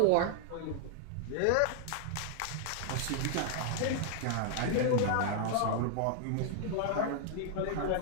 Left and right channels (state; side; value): different; both; correlation 0.00